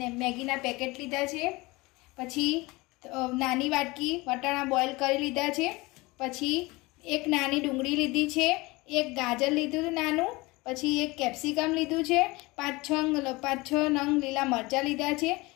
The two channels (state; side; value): quieter; right; 22.9 dB